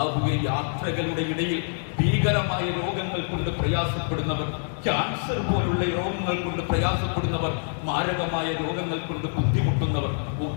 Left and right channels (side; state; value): right; silent; digital silence